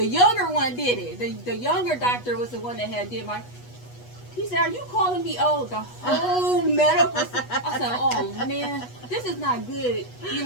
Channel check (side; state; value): right; late; 8.2 ms